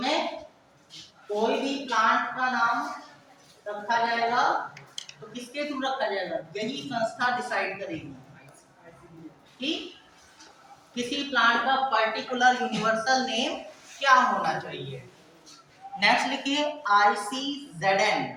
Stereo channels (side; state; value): both; identical; correlation 1.00